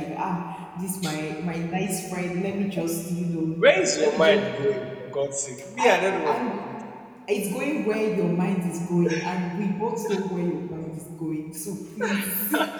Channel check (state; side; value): identical; both; correlation 1.00